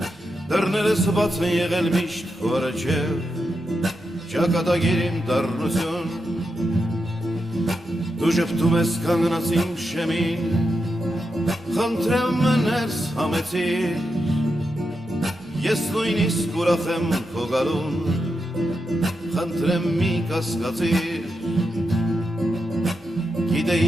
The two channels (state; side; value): normal; both; correlation 0.86